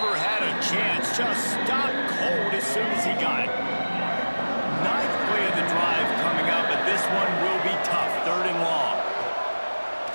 had a chance, just stopped cold as soon as he got it. 9th play of the drive coming up, but this one will be tough, 3rd and long.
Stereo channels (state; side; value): inverted; both; correlation -1.00